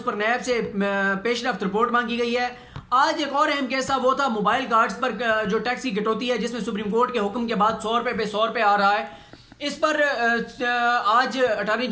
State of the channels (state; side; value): identical; both; correlation 1.00